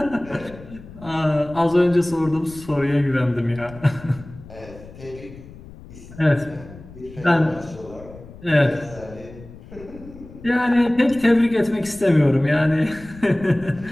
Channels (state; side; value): noise; left; rumble, 18 dB below the sound